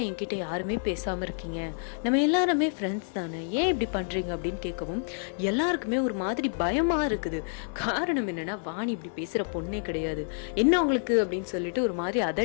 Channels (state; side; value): silent; right; 59 dB below the other